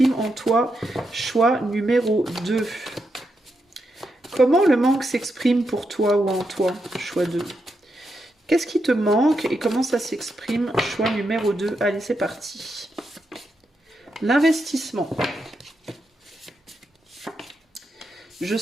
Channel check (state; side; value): normal; both; correlation 0.84